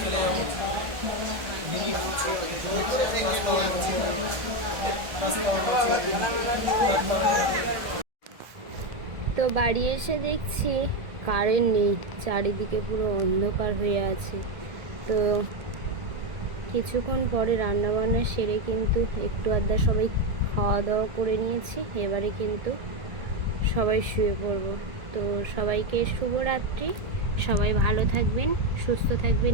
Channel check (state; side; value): late; left; 1.6 ms